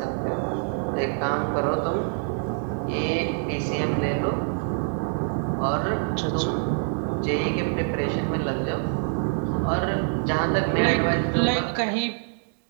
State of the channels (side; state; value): left; silent; 61 dB below the other